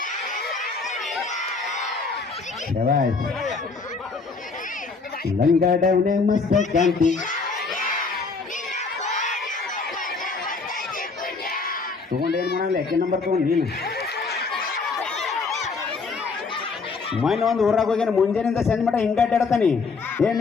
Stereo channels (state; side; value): quieter; right; 4.4 dB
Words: ಲಂಗಡವನೆ ಮಸ್ತ ಕ್ಯಾಂಟಿ ತಗೊಂಡೇನು ಮಾಡಲ್ಲ. ಯಾಕೆ ನಂಬರ್ ತಗೊಂಡು ನೀನು ಮೊನ್ನೆ ಒಂದು ಊರಾಗ ಹೋಗ್ಯಾನ, ಮುಂಜಾನಿಂದ ಸಂಜೆ ಮಟ್ಟ ಹಿಂಗೆ ಅಡ್ಡಾಡ್ತಾನೆ.